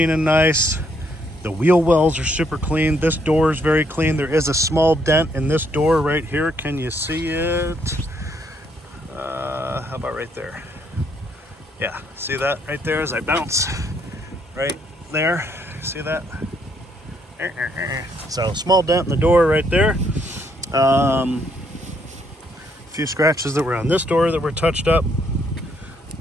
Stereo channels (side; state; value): both; normal; correlation 0.71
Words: and nice. The wheel wells are super clean. This door is very clean. There is a small dent in this door right here. Can you see it? How about right there? Yeah, see that right there as I bounce? Right there, see that? So small dent in the door right there. A few scratches that were on this door that were touched up.